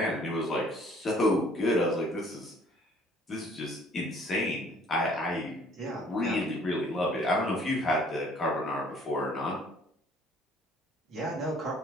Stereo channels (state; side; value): normal; both; correlation 0.58